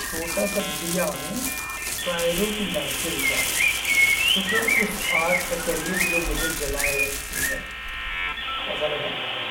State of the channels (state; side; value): identical; both; correlation 1.00